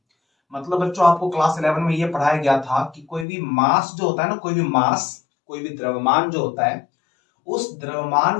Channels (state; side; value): drops out; right; at 3.2 s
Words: मतलब बच्चों आपको क्लास 11 में ये पढ़ाया गया था कि कोई भी मास जो होता है ना, कोई भी मास, कोई भी द्रव्यमान जो होता है, उस द्रव्यमान